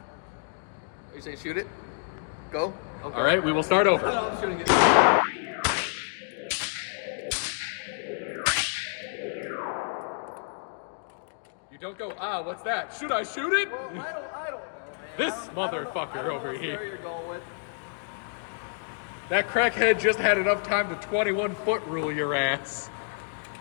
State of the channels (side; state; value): right; silent; digital silence